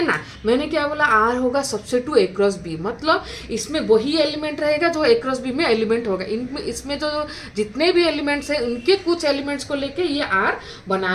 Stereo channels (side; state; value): both; identical; correlation 1.00